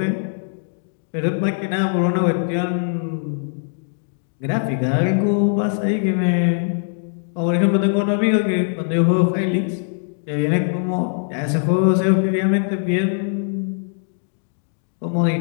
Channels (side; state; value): right; silent; digital silence